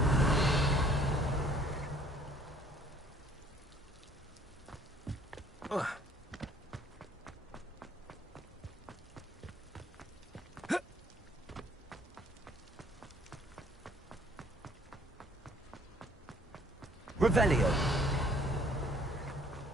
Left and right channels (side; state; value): both; normal; correlation 0.59